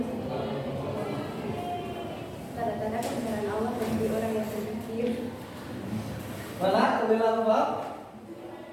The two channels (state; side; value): identical; both; correlation 1.00